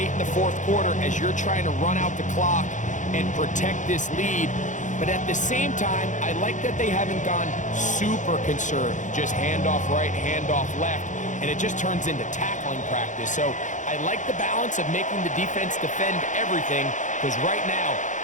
in the 4th quarter as you're trying to run out the clock and protect this lead. But at the same time, I like that they haven't gone super conservative. Just handoff right, handoff left, and it just turns into tackling practice. So I like the balance of making the defense defend everything, because right now,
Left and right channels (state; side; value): late; right; 0.36 ms